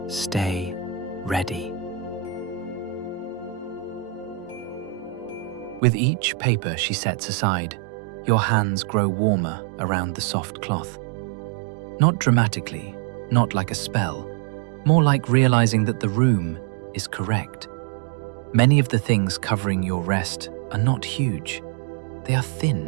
stay ready." With each paper she sets aside, your hands grow warmer around the soft cloth. Not dramatically, not like a spell, More like realizing that the room is correct. Many of the things covering your rest are not huge. They are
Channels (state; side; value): drops out; left; at 5.8 s